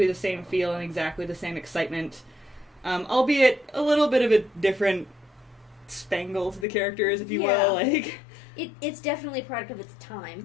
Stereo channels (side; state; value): right; drops out; at 6.7 s